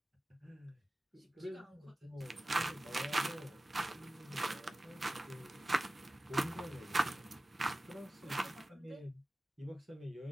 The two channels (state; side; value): normal; both; correlation 0.96